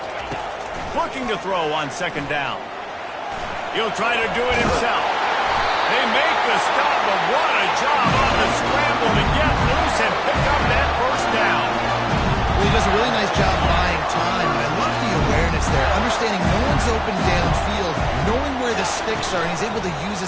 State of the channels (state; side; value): identical; both; correlation 1.00